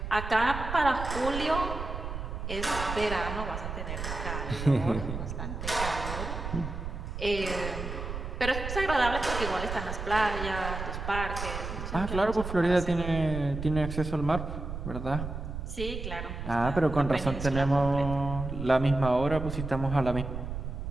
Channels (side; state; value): right; noise; rumble, 6 dB below the sound